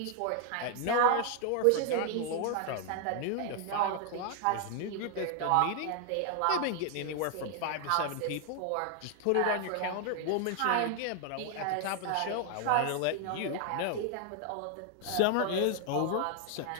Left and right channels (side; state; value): both; different; correlation 0.00